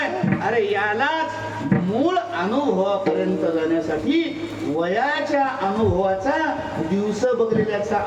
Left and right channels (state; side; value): identical; both; correlation 1.00